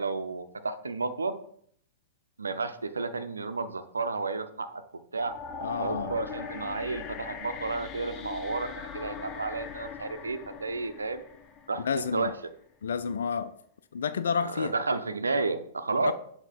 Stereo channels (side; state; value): both; inverted; correlation -0.71